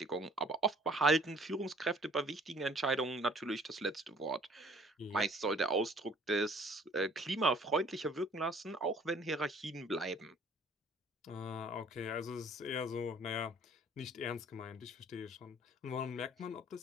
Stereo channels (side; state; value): both; normal; correlation 0.55